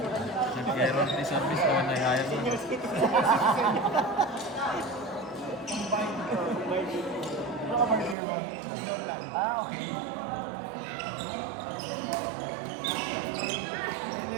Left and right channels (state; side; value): drops out; left; at 8.2 s